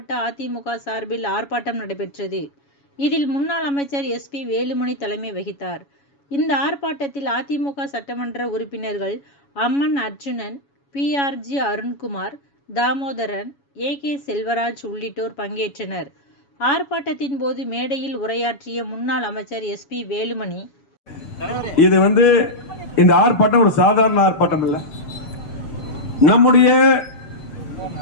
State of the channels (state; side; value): late; right; 7.1 ms